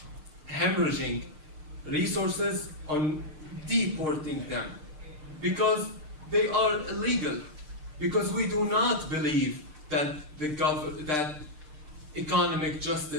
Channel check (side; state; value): left; late; 6.6 ms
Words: hemorrhaging resources on deporting them because they are illegal. Because we do not believe that that economic